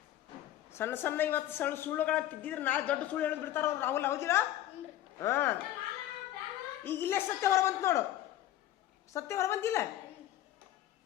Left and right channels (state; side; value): quieter; right; 13.0 dB